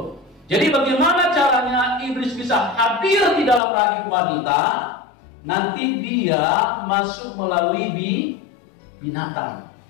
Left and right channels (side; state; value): right; drops out; at 3.6 s